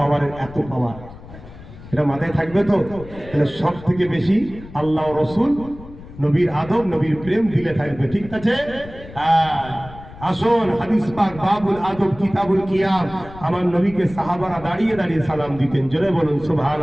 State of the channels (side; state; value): left; noise; rumble, 17 dB below the sound